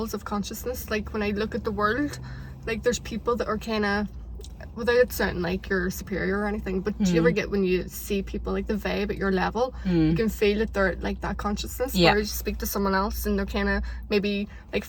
of consciousness. Like when I look at the world, like there's people that are kind of, without it sounding like you're superior or anything, but do you ever get when you see people like the vibe at your level, you can feel that they're like that consciousness, where you speak to someone else and they're kind of maybe like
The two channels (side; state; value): both; identical; correlation 1.00